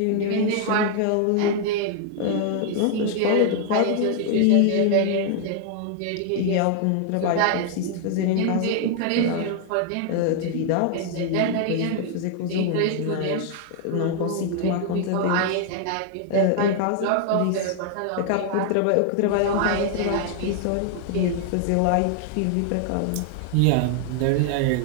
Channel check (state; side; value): different; both; correlation 0.00